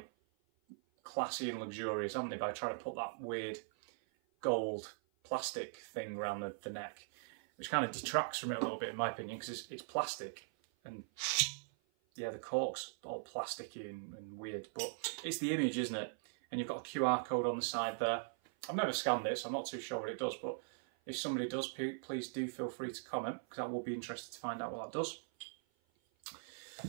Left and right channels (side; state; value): left; silent; 51 dB below the other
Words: classy and luxurious, haven't they, by trying to put that weird gold plastic thing around the neck, which kind of detracts from it a little bit in my opinion, because it's plastic and yeah, the cork's all plasticky and weird, but it's the image, isn't it? And you've got a QR code on the side there. I've never scanned it, so I'm not too sure what it does, but if somebody does, please do feel free to comment, because I will be interested to find out what that does.